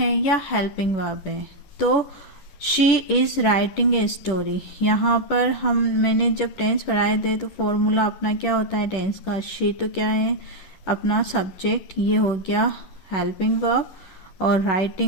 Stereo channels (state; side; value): late; right; 10 ms